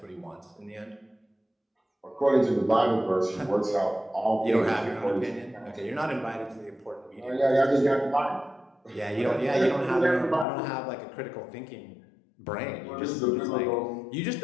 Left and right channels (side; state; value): right; drops out; at 10.5 s